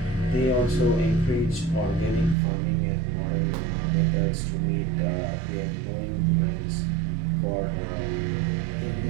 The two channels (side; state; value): left; drops out; at 2.4 s